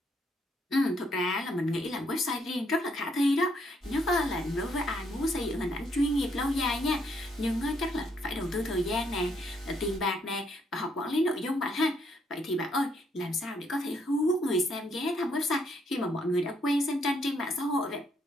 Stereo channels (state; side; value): normal; both; correlation 0.72